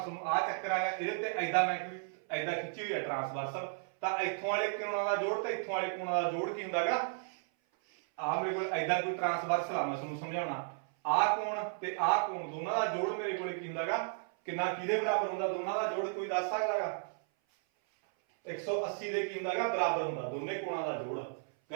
ਆਹ ਚੱਕਰ ਆਗਾ, ਇਹਦੇ ਤੇ ਐਦਾਂ ਮੈਂ ਕੋਈ ਐਦਾਂ ਖਿੱਚੀ ਹੋਈ ਹੈ ਟ੍ਰਾਂਸਵਰਸਲ। ਤਾਂ ਇੱਥੋਂ ਵਾਲੇ ਕੋਣਾਂ ਦਾ ਜੋੜ ਤੇ ਇੱਥੋਂ ਵਾਲੇ ਕੋਣਾਂ ਦਾ ਜੋੜ ਕੀ ਹੁੰਦਾਗਾ? ਆਹ ਮੇਰੇ ਕੋਲ ਐਦਾਂ ਕੋਈ ਟ੍ਰਾਂਸਵਰਸਲ ਆ, ਮੈਂ ਤੁਹਾਨੂੰ ਸਮਝਾਉਣਾ। ਆਹ ਕੋਣ ਤੇ ਆਹ ਕੋਣ ਦੋਨਾਂ ਦਾ ਜੋੜ ਮੇਰੇ ਕੋਲ ਕੀ ਹੁੰਦਾਗਾ? ਕਿੰਨਾ ਕਿਹਦੇ ਬਰਾਬਰ ਹੁੰਦਾ? ਦੋਨਾਂ ਦਾ ਜੋੜ ਕੋਈ ਦੱਸ ਸਕਦਾਗਾ? 180 ਦੇ ਕੀ ਹੁੰਦਾਗਾ? ਬਰਾਬਰ ਹੁੰਦਾ ਦੋਨੇ ਕੋਣਾਂ ਦਾ ਜੋੜ।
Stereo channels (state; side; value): silent; left; 55 dB below the other